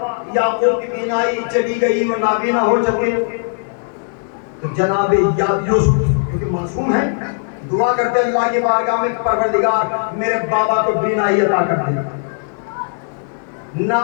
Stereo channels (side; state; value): right; silent; 59 dB below the other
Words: یعقوب کی بینائی چلی گئی، وہ نابینا ہو چکے، تو جناب یوسف کیونکہ معصوم ہے، دعا کرتے اللہ کی بارگاہ میں، پروردگار میرے بابا کو بینائی عطا کر دے۔ نہ